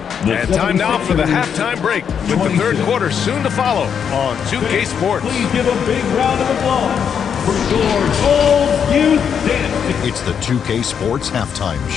time now for the halftime break with the third quarter soon to follow on 2K Sports. Please give a big round of applause for your Gold Youth Dance. It's the 2K Sports Halftime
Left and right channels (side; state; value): right; quieter; 7.6 dB